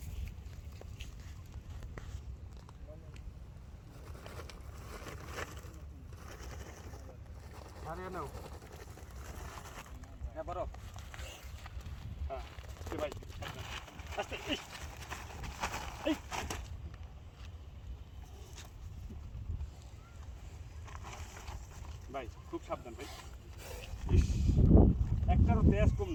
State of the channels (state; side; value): identical; both; correlation 1.00